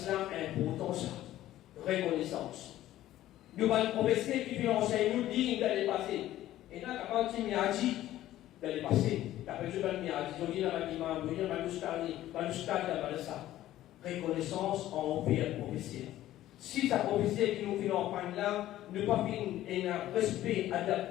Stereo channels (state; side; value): quieter; right; 14.0 dB